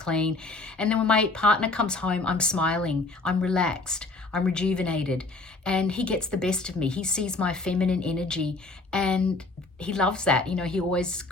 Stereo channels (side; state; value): right; quieter; 3.3 dB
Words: And then when my partner comes home, I'm smiling, I'm relaxed, I'm rejuvenated, and he gets the best of me. He sees my feminine energy and he loves that. You know, he always